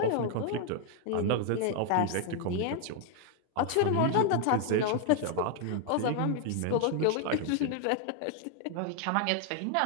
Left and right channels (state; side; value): different; both; correlation 0.00